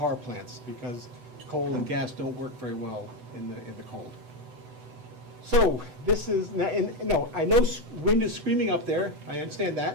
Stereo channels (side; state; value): left; late; 8.0 ms